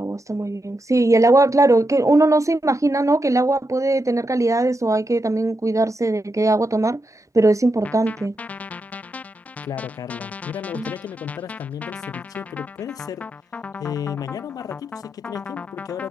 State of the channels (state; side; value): normal; both; correlation 0.85